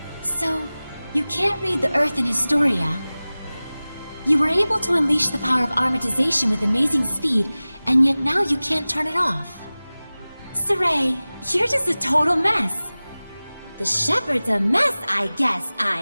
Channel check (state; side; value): inverted; both; correlation -0.98